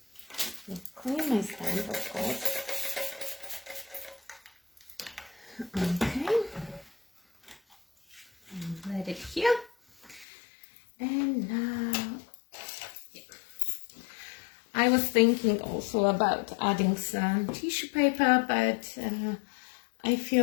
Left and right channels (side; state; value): right; drops out; at 10.2 s